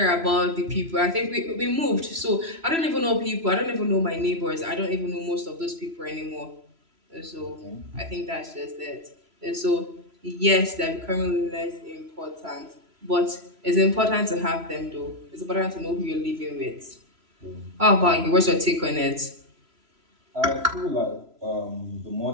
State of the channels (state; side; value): late; left; 3.0 ms